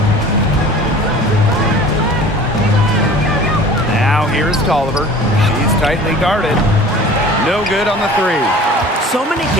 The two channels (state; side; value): normal; both; correlation 0.44